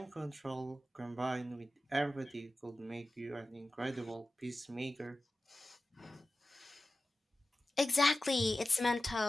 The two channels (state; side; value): normal; both; correlation 0.95